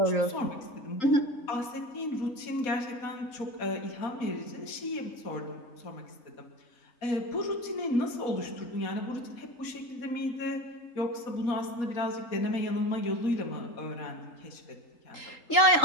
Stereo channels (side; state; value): right; late; 4.2 ms